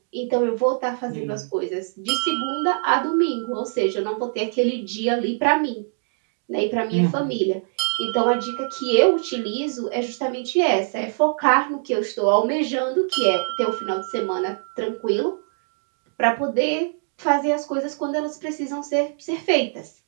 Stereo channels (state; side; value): silent; left; digital silence